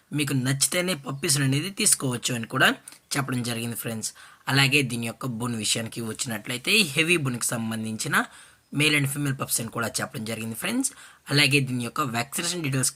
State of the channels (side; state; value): both; identical; correlation 1.00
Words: మీకు నచ్చితేనే పప్పీస్ని అనేది తీసుకోవచ్చు అని కూడా చెప్పడం జరిగింది ఫ్రెండ్స్. అలాగే దీని యొక్క బోన్ విషయానికి వచ్చినట్లయితే హెవీ బోన్కి సంబంధించిన మేల్ అండ్ ఫీమేల్ పప్స్ అని కూడా చెప్పడం జరిగింది ఫ్రెండ్స్. అలాగే దీని యొక్క వ్యాక్సినేషన్